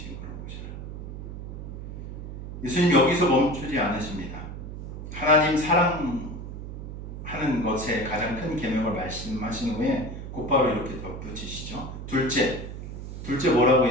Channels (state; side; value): noise; right; hum, 9 dB below the sound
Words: 오셔라. 예수님 여기서 멈추지 않으십니다. 하나님 사랑하는 것에 가장 큰 계명을 말씀하신 후에 곧바로 이렇게 덧붙이시죠. 둘째 뭐라고